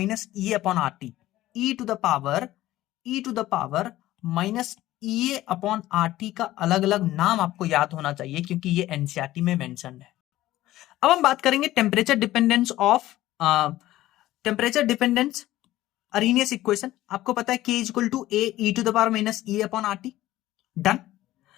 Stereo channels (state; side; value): quieter; right; 15.5 dB